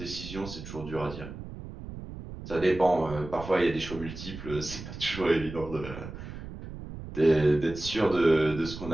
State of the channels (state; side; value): noise; right; rumble, 11 dB below the sound